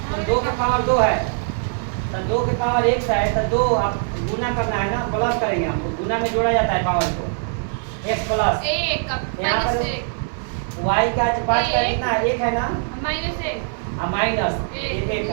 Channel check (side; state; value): left; silent; 55 dB below the other